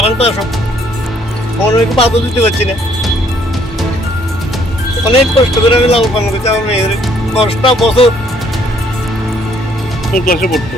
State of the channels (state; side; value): normal; both; correlation 0.65